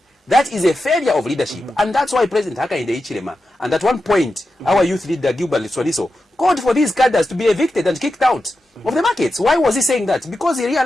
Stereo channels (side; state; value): both; normal; correlation 0.90